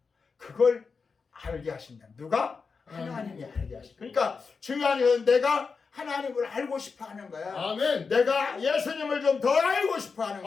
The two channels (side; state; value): right; quieter; 5.0 dB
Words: 그걸 알게 하신다. 누가? 하나님이 알게 하신다. 그러니까 중요한 것은 내가 하나님을 알고 싶어 하는 거야. 아멘. 내가 예수님을 좀 더 알고 싶어 하는